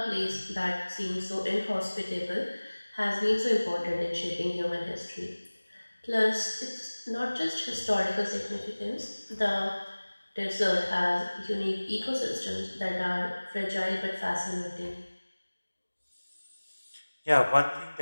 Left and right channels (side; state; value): both; inverted; correlation -1.00